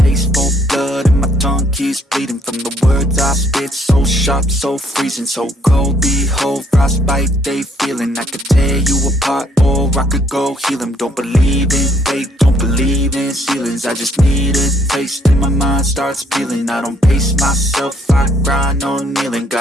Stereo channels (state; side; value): normal; both; correlation 0.67